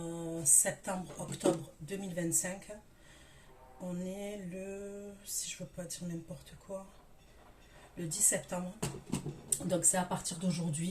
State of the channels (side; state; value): both; identical; correlation 1.00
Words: septembre-octobre 2025. On est le, si je ne veux pas dire n'importe quoi, le 10 septembre. Donc c'est à partir